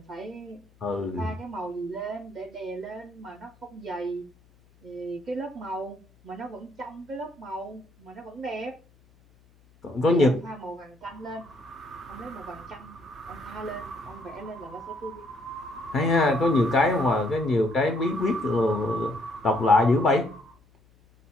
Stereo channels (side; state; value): left; noise; hum, 30 dB below the sound